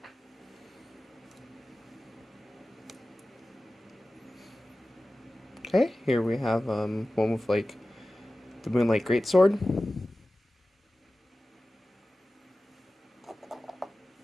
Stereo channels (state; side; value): normal; both; correlation 0.96